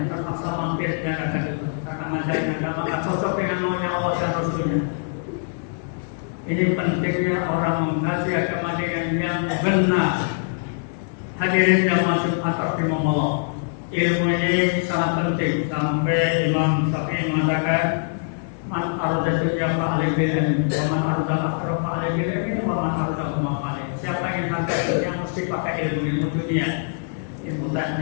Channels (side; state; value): right; silent; digital silence